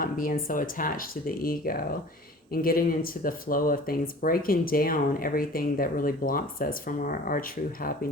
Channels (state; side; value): normal; both; correlation 0.44